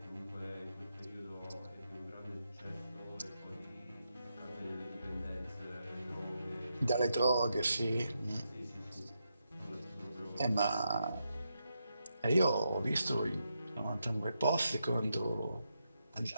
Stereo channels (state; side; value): inverted; both; correlation -0.83